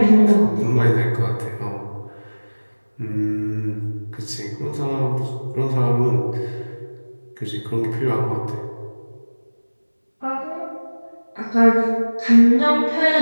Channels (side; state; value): both; inverted; correlation -1.00